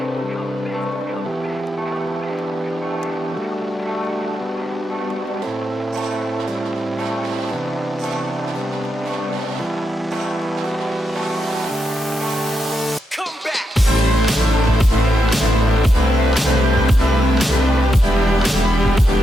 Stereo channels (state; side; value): normal; both; correlation 0.84